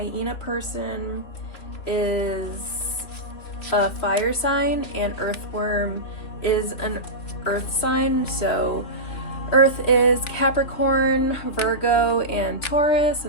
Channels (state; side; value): late; right; 3.7 ms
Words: person is a fire sign and earthworm is an earth sign. So earth is Capricorn, Virgo, and Taurus,